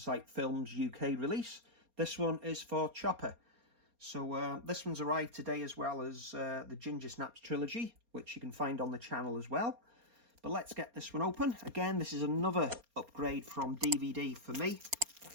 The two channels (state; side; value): late; left; 4.3 ms